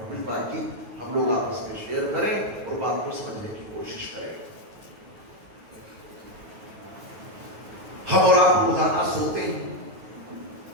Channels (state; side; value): late; left; 9.3 ms